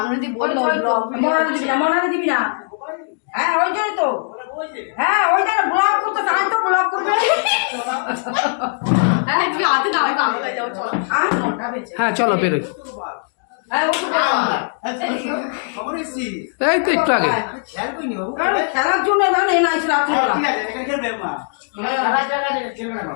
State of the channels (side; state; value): right; silent; digital silence